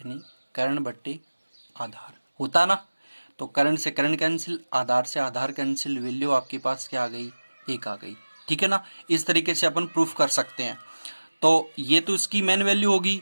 कर्ण बट्टे आधार होता ना। तो कर्ण से कर्ण कैंसिल, आधार से आधार कैंसिल, वैल्यू आपके पास क्या आ गई, एक आ गई, ठीक है ना। इस तरीके से अपन प्रूफ कर सकते हैं। तो ये तो इसकी मेन वैल्यू होगी,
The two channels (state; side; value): inverted; both; correlation -1.00